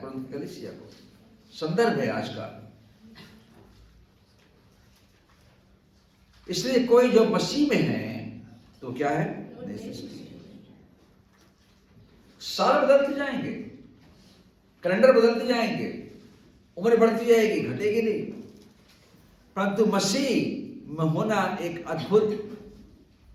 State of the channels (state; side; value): identical; both; correlation 1.00